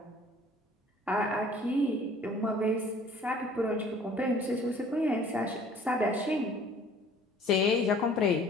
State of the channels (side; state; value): both; normal; correlation 0.52